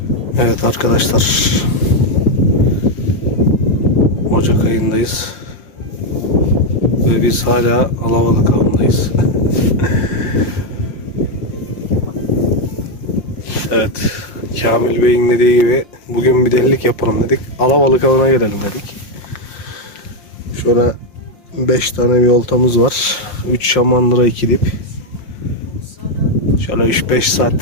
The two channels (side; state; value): right; late; 5.6 ms